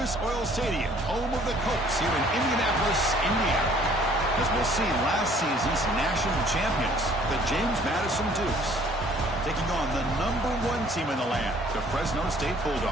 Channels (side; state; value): both; normal; correlation 0.57